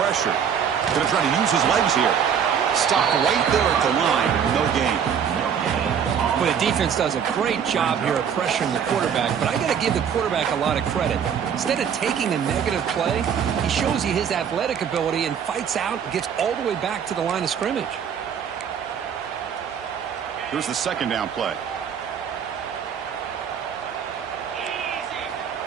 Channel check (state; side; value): quieter; left; 7.8 dB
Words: Going to try to use his legs here. Stop right there at the line. No gain. Well, the defense does a great job here of pressuring the quarterback, but I got to give the quarterback a lot of credit. Instead of taking a negative play, he shows you his athletic ability and fights out and gets all the way back to the line of scrimmage. Here's the second down play.